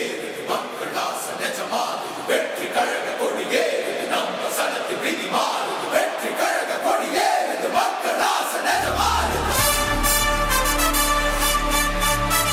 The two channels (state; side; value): identical; both; correlation 1.00